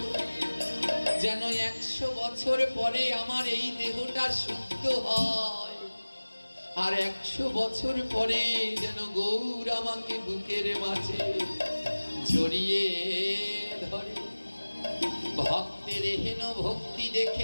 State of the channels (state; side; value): inverted; both; correlation -1.00